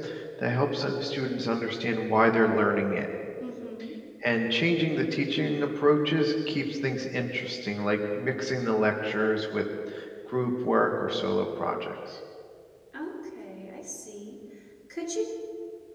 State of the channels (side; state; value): both; identical; correlation 1.00